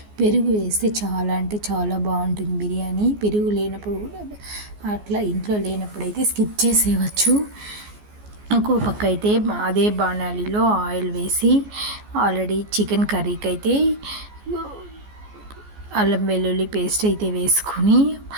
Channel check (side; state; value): left; late; 14 ms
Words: పెరుగు వేస్తే చాలా అంటే చాలా బాగుంటుంది బిర్యానీ. పెరుగు లేనప్పుడు అట్లా ఇంట్లో లేనప్పుడు అయితే స్కిప్ చేసేయవచ్చు. ఇంకో పక్క అయితే అదే బాణాలిలో ఆయిల్ వేసి ఆల్రెడీ చికెన్ కర్రీకి అయితే అల్లం వెల్లుల్లి పేస్ట్ అయితే వేసుకొని